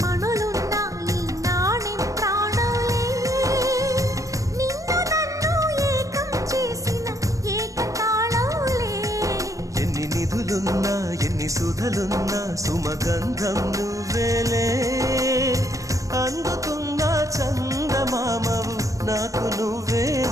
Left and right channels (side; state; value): left; late; 0.16 ms